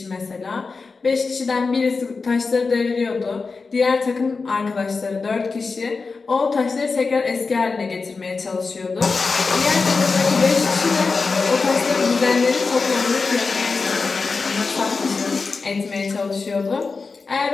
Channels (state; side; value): quieter; right; 4.4 dB